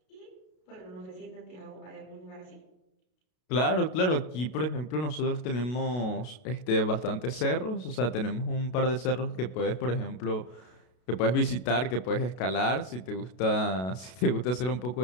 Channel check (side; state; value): right; late; 32 ms